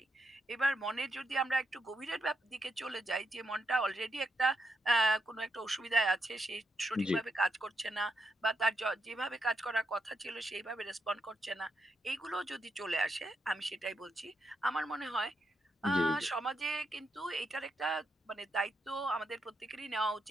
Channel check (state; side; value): normal; both; correlation 0.81